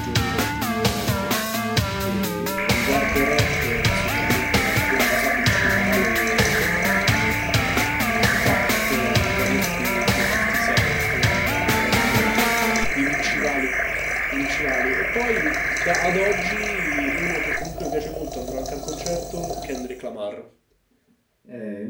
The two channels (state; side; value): identical; both; correlation 1.00